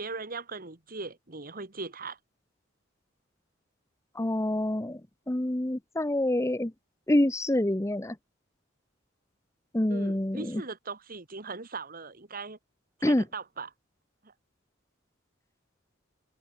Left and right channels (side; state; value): both; normal; correlation 0.83